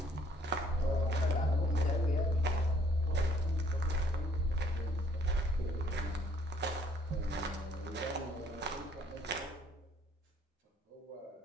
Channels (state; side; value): normal; both; correlation 0.63